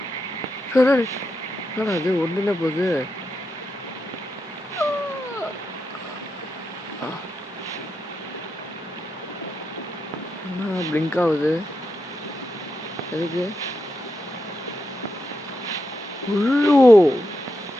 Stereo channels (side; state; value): both; normal; correlation 0.85